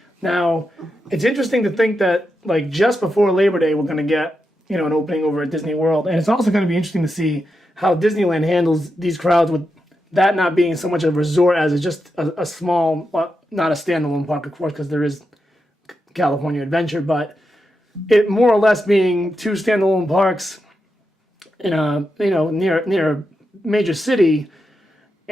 Now, it's interesting to think that, just before Labor Day, we're going to get, an opening over at Disney World. And it's also going to be interesting to see how Disneyland handles these crowds with that not being so much a resort as it's just a small, not a standalone park, of course, because there is California Adventure, but it more or less being two standalone parks in a near a major city,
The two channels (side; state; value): both; normal; correlation 0.87